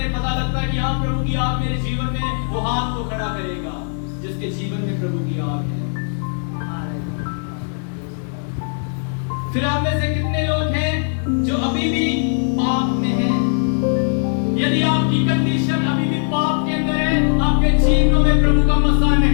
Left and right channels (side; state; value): right; silent; 66 dB below the other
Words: पता लगता है कि हाँ प्रभु की आग मेरे जीवन में, वो हाथ को खड़ा करेगा जिसके जीवन में प्रभु की आग है। फिर आप में से कितने लोग हैं जो अभी भी पाप में हैं? यदि आपकी कंडीशन अभी भी पाप के अंदर है, आपके जीवनों में प्रभु का मसा